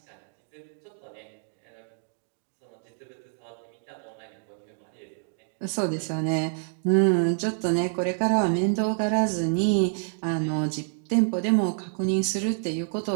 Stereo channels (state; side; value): silent; left; digital silence